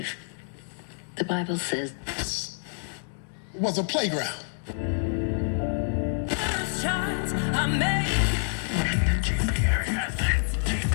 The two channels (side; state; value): right; silent; 59 dB below the other